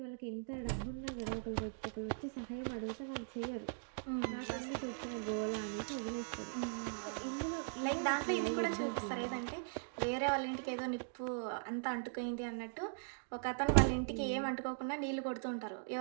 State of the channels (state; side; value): silent; left; digital silence